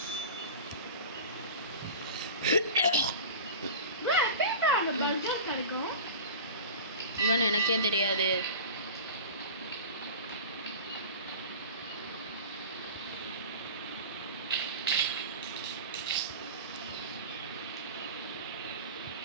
இவன் எனக்கே தெரியாது.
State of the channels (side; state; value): both; inverted; correlation -0.34